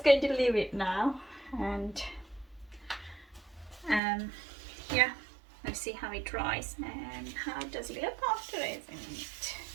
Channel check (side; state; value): left; drops out; at 4.0 s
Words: going to leave it now, and yeah, let's see how it dries and how does it look after using it.